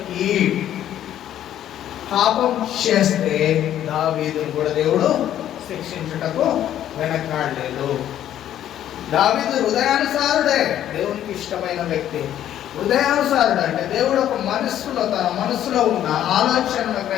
పాపం చేస్తే దావీదును కూడా దేవుడు శిక్షించుటకు వెనకాడలేదు. దావీదు హృదయానుసారుడే, దేవునికి ఇష్టమైన వ్యక్తి. హృదయానుసారుడు అంటే దేవుడు ఒక మనస్సులో, తన మనస్సులో ఉన్న ఆలోచనను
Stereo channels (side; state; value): right; quieter; 11.3 dB